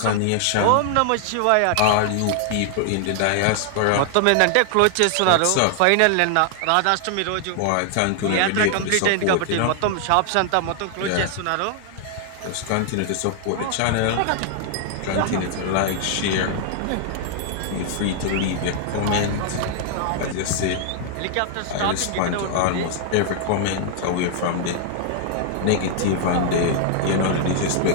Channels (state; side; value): different; both; correlation 0.00